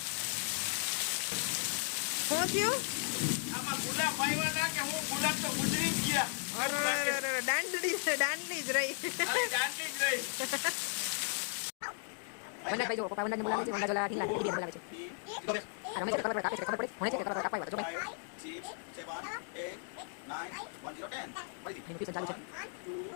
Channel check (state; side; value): silent; right; 54 dB below the other